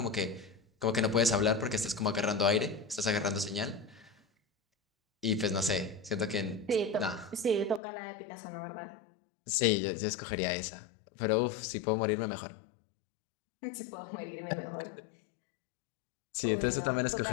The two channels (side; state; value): right; drops out; at 7.8 s